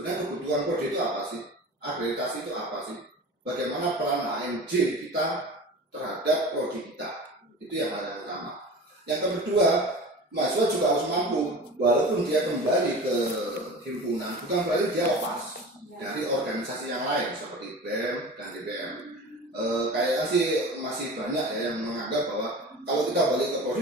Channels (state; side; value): normal; both; correlation 0.35